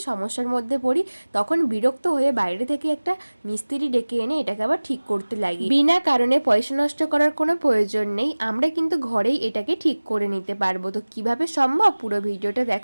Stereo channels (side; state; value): both; inverted; correlation -1.00